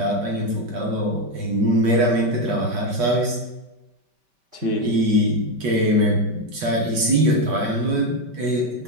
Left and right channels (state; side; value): late; left; 5.2 ms